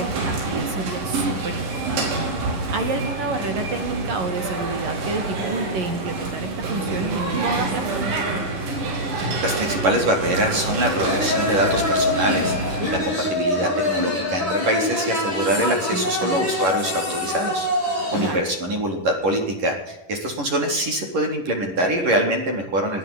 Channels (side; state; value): left; late; 11 ms